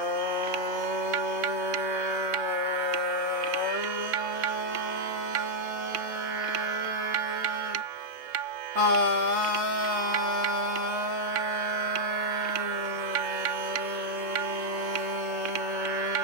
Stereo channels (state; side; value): late; left; 3.2 ms